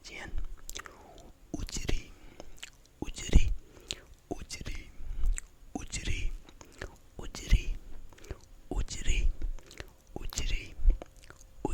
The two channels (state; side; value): identical; both; correlation 1.00